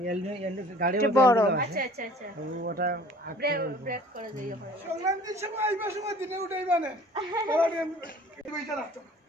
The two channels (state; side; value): normal; both; correlation 0.50